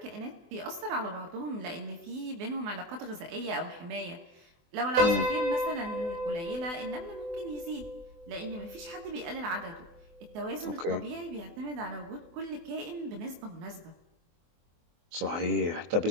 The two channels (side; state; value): left; late; 24 ms